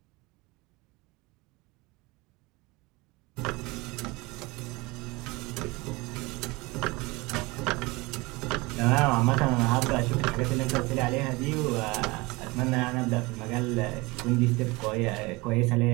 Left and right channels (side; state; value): left; quieter; 23.9 dB